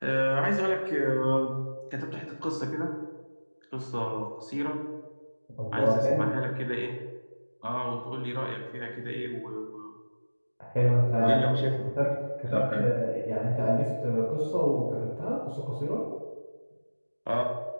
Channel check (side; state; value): both; inverted; correlation -1.00